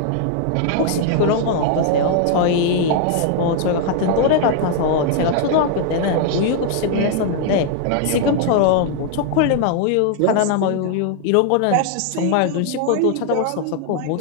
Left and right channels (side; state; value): both; different; correlation 0.00